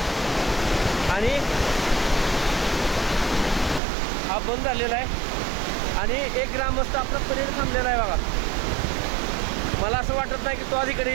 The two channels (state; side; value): drops out; left; at 3.8 s